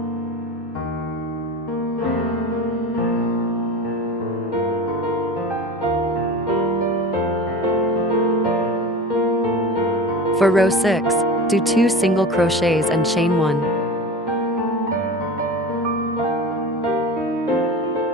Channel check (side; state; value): both; normal; correlation 0.32